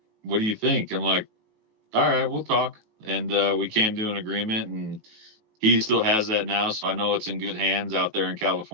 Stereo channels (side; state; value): left; late; 18 ms